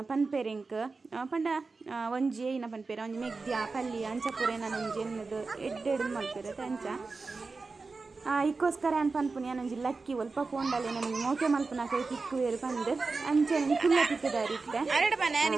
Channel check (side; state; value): left; quieter; 4.1 dB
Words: ಪನ್ಪೇರು ಇಂಕ್ ಪಂಡ ಒಂಜಿ ಏನ ಪನ್ಪೇರು ಒಂಜಿ ಮೆಗ್ದ್ಯ ಪಲ್ಲಿ ಅಂಚ ಪೂರ ನಾನು ಒಂಜಿ ಎನ್ನದು ಎಡ್ಡೆಡು ಮಲ್ಪೇರತೆ ಅಂಚ ಇಕ್ಕೋಸ್ಕರ ಏನು ಪನ್ಪುನಿ ಏನೊಂಜಿ ಲಕ್ಕಿ ಒಲ್ಪ ಪೋಂಡಲ್ಲಿ ನನಗೆ ಮೋಕೆ ಮಲ್ಪುನ ಕೈ ತಿಕ್ಕುವೇರು ಬಂದು ಅಂಚೆ ಕುಲ್ಲ ತಿಕ್ಕಿದಾರಿ ಇತ್ತೆ